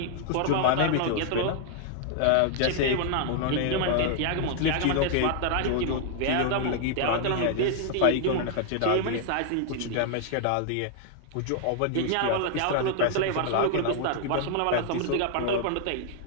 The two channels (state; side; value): different; both; correlation 0.00